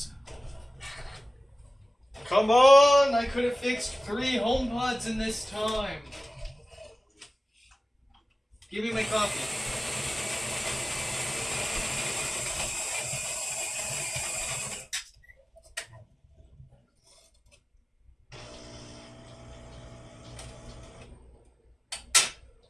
Come on! I could have fixed 3 HomePods in this time. Give me my coffee.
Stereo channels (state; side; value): normal; both; correlation 0.97